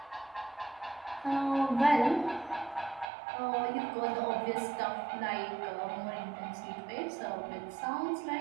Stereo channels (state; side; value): drops out; left; at 3.1 s